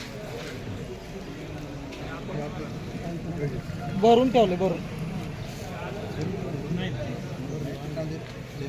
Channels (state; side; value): identical; both; correlation 1.00